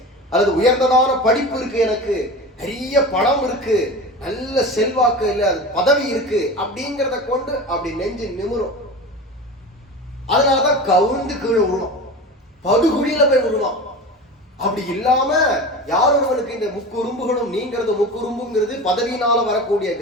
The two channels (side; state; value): both; normal; correlation 0.31